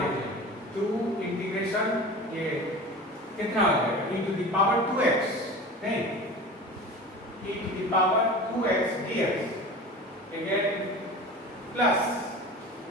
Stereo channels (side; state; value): both; normal; correlation 0.35